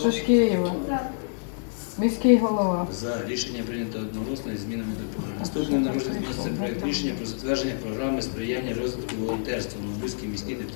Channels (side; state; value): right; silent; 56 dB below the other